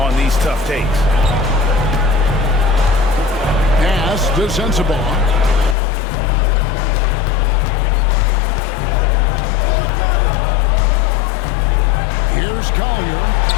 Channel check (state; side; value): drops out; right; at 5.8 s